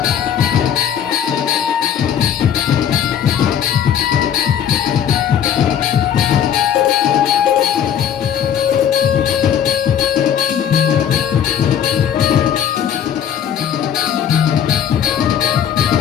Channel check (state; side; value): quieter; right; 9.1 dB